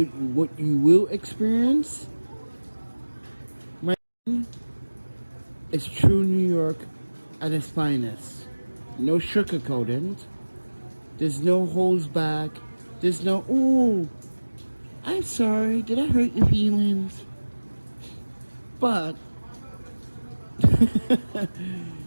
will experience, my is true New York at its finest. No sugarcoating. There's no holds back. There's no, ooh, I'm sorry, did I hurt your feelings? But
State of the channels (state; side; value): inverted; both; correlation -1.00